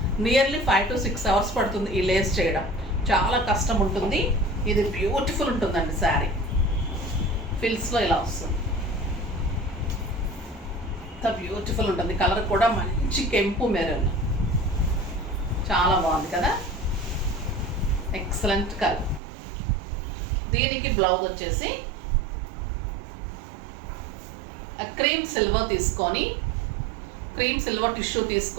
నియర్లీ 5 to 6 hours పడుతుంది. ఈ లేస్ చేయడం చాలా కష్టం ఉంటుంది. ఇది బ్యూటిఫుల్ ఉంటుందండి శారీ. ఫిల్స్లో ఇలా వస్తుంది. ఇంత బ్యూటిఫుల్ ఉంటుంది. కలర్ కూడా మంచి కెంపు మెరూన్. చాలా బాగుంది కదా, ఎక్సలెంట్ కలర్. దీనికి బ్లౌజ్ వచ్చేసి క్రీమ్ సిల్వర్ తీసుకొని, క్రీమ్ సిల్వర్ టిష్యూ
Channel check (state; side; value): drops out; left; at 19.2 s